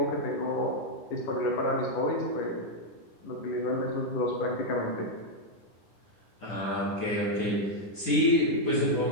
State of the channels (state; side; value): late; right; 9.9 ms